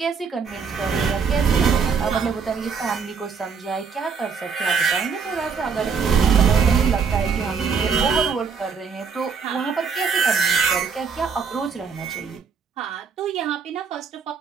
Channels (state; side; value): quieter; left; 5.8 dB